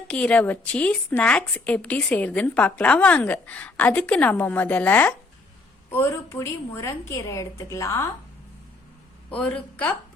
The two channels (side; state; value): right; quieter; 3.3 dB